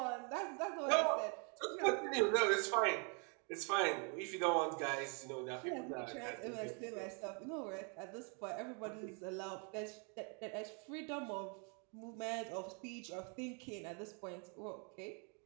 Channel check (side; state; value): left; quieter; 37.4 dB